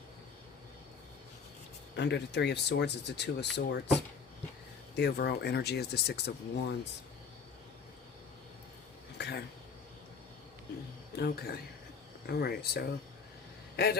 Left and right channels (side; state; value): right; quieter; 5.6 dB